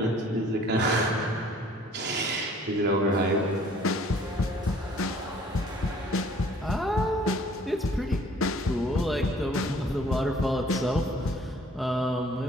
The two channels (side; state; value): both; normal; correlation 0.56